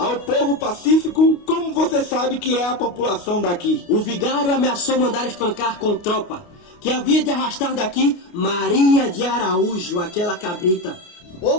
povo pacífico, como você sabe que é a população daqui. O vigário ameaçou mandar espancar com tropa, que havia de arrastar daqui Maria de Araújo, aquela cabrita, ou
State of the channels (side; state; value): right; late; 29 ms